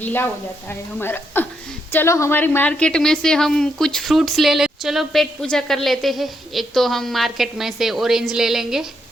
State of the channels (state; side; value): normal; both; correlation 0.78